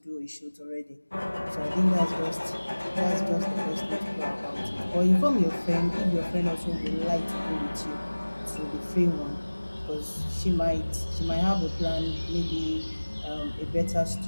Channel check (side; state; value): both; inverted; correlation -1.00